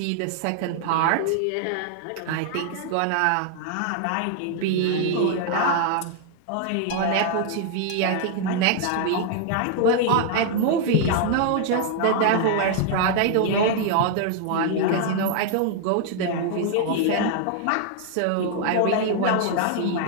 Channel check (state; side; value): different; both; correlation 0.00